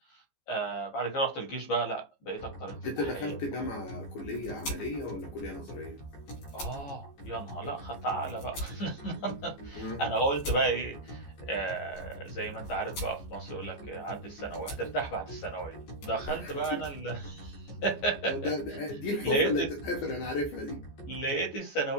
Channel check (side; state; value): right; late; 14 ms